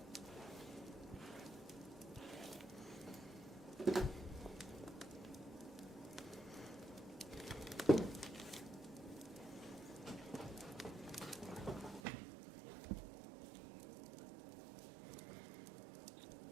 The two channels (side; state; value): left; drops out; at 12.0 s